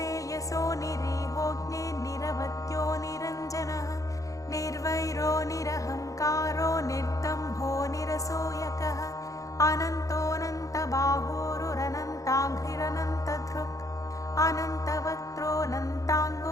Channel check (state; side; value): late; right; 0.16 ms